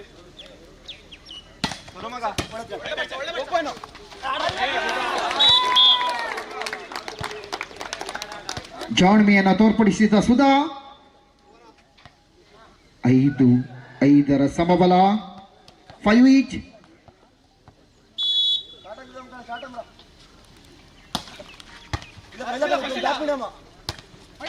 ಜಾಣ್ಮೆಯನ್ನು ತೋರ್ಪಡಿಸಿದ ಸುಧಾ. 5-5 ಸಮಬಲ. 5 ಈಚ್.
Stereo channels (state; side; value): identical; both; correlation 1.00